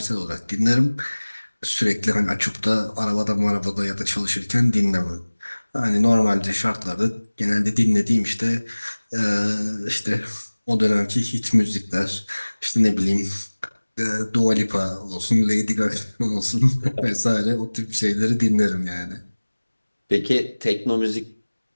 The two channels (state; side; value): inverted; both; correlation -1.00